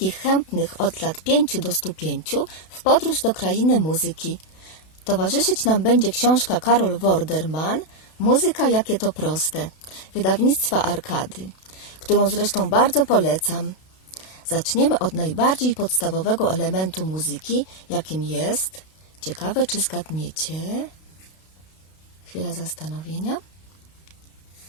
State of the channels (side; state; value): right; late; 32 ms